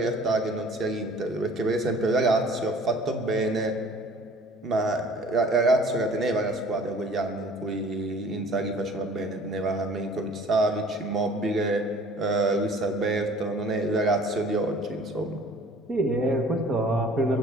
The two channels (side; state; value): both; normal; correlation 0.50